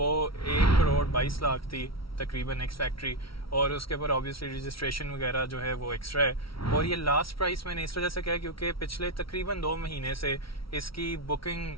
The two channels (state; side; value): late; right; 0.75 ms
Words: 1,22,00,000 थी तकरीबन एक्स फैक्ट्री, और उसके ऊपर ऑब्वियसली रजिस्ट्रेशन वगैरह जो है वो एक्स्ट्रा है। और ये लास्ट प्राइस मैंने इस वजह से कहा क्योंकि पिछले तकरीबन 2 महीने से इसकी बुकिंग